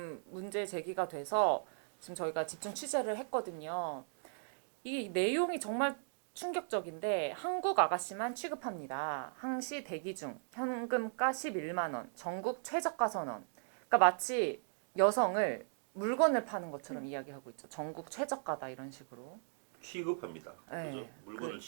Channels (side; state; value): left; silent; digital silence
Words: 문제 제기가 돼서 지금 저희가 집중 취재를 했거든요. 이 내용이 정말 충격적인데 한국 아가씨만 취급합니다. 항시 대기 중 현금가 11만 원, 전국 최저가 선언. 그러니까 마치 여성을 물건을 파는 것처럼 이야기하고 있죠. 전국 최저가다 이런 식으로. 취급합니다. 네. 그죠? 물건을